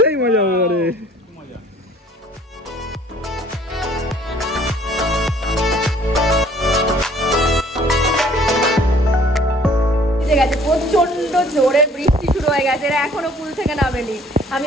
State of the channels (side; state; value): both; normal; correlation 0.56